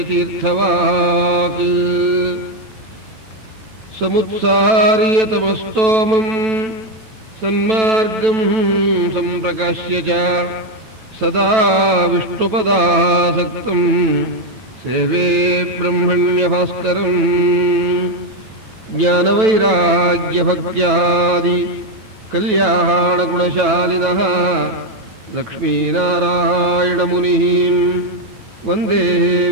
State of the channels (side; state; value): left; late; 9.1 ms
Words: समुत्सार्यतमस्तोमं सन्मार्गं सम्प्रकाश्य च सदा विष्णुपदासक्तं सेवे ब्रह्मण्यभास्करम् ज्ञानवैराग्यभक्त्यादि कल्याणगुणशालिनः लक्ष्मीनारायणमुनिः वन्दे